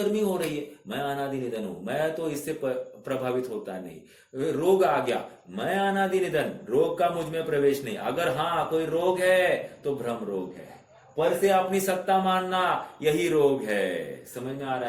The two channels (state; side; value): identical; both; correlation 1.00